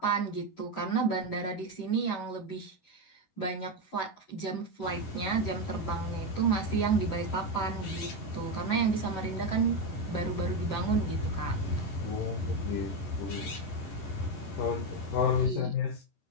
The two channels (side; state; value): right; late; 11 ms